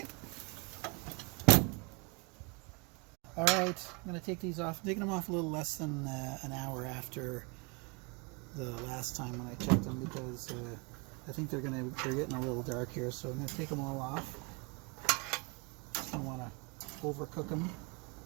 All right, I'm going to take these off. I'm taking them off a little less than an hour after the last time when I checked them, because I think they're getting a little dark here. So I'm going to take them all off. I don't want to overcook them.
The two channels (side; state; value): left; quieter; 30.9 dB